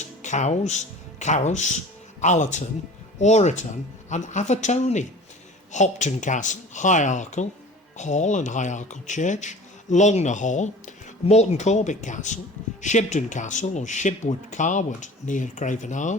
Cows, Carus, Allerton, Oreton and Avatoni. Hopton Castle, High Arkle Hall and High Arkle Church, Longner Hall, Morton Corbet Castle, Shibden Castle or Shibwood Carwood near Craven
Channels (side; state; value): both; normal; correlation 0.42